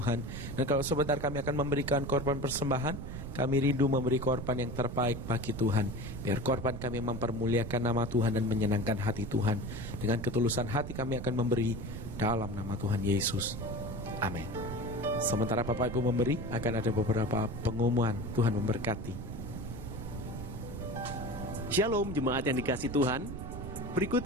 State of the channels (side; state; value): right; noise; rumble, 7 dB below the sound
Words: Dan kalau sebentar kami akan memberikan korban persembahan, kami rindu memberi korban yang terbaik bagi Tuhan. Biar korban kami mempermuliakan nama Tuhan dan menyenangkan hati Tuhan. Dengan ketulusan hati kami akan memberi dalam nama Tuhan Yesus. Amin. Sementara Bapak Ibu memberi, akan ada beberapa pengumuman. Tuhan memberkati. Shalom jemaat yang dikasih Tuhan. Berikut